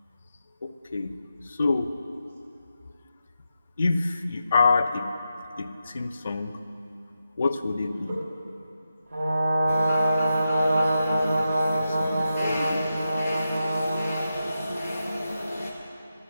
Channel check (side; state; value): both; inverted; correlation -0.88